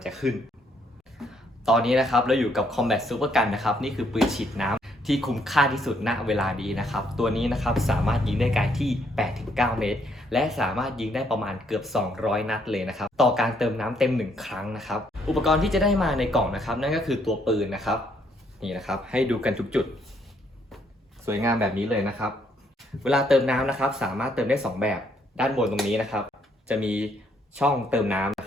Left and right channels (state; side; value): normal; both; correlation 0.70